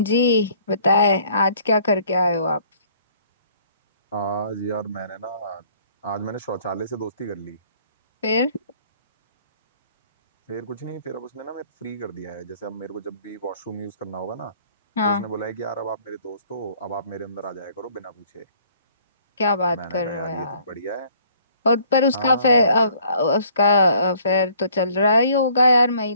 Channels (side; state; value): both; inverted; correlation -0.58